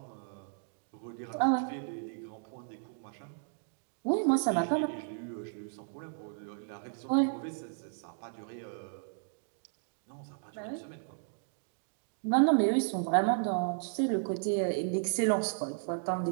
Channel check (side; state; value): left; silent; digital silence